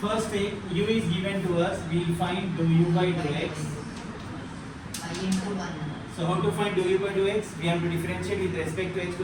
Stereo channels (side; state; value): both; identical; correlation 1.00